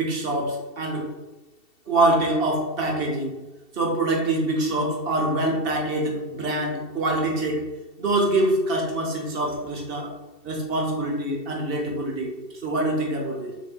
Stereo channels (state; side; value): late; right; 2.7 ms